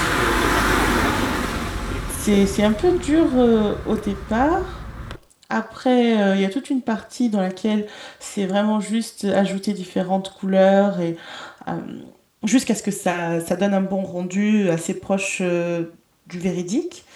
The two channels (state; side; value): identical; both; correlation 1.00